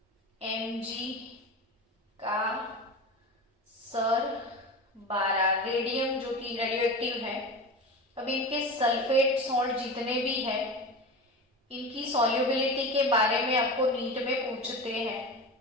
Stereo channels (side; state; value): both; normal; correlation 0.28